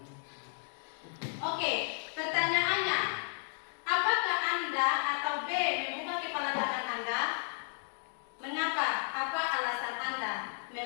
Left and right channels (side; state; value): right; silent; 55 dB below the other